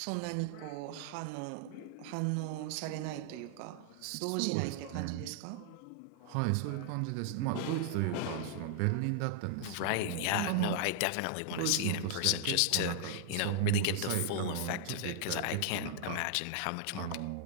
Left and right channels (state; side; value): different; both; correlation -0.01